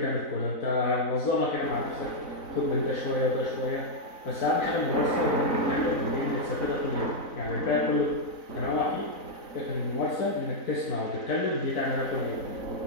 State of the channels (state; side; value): late; right; 3.9 ms